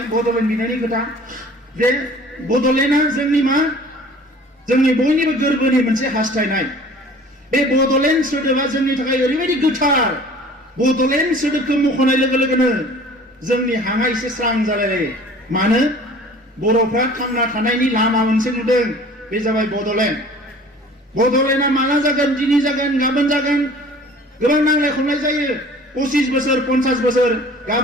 बड'लेण्ड बिनायनि खोथा जे बड'लेण्डआ जोंनि मा जोंनि बयनिबो गोरबोनि मोनसे हास्थायनाय बे बड'लेण्ड सोदोबा जोंनि थाखाय ओरैबायदि गोथार बड'लेण्ड सोदोबखौ मख'नाय लोगो लोगोनो जोंनि हाङा एसे स्रां जालायलायो मानो बर'फ्रा थांना थानायनि लामा मोनसे नुदों बे जाबाय बड'लेण्ड बड'लेण्डआ माला जागोन दिनै जागोन गाबोन जागोन गोबां नांलाय खमलाय जायो 25 बोसोर 50 बोसोर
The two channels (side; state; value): both; normal; correlation 0.47